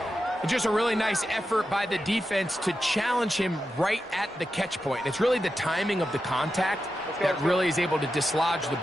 Just a really nice effort by the defense to challenge him right at the catch point. It's really the timing of the contact that really is able to dislodge the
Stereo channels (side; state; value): both; normal; correlation 0.90